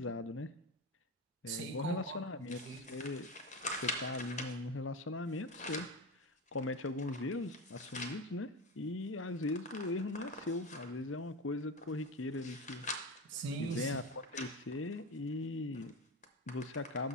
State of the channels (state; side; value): normal; both; correlation 0.22